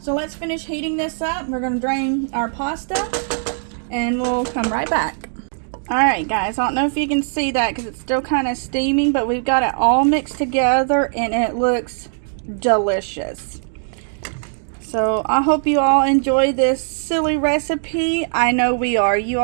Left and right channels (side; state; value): left; silent; digital silence